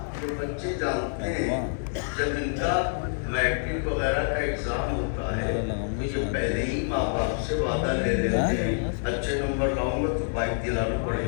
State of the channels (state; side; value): silent; right; 57 dB below the other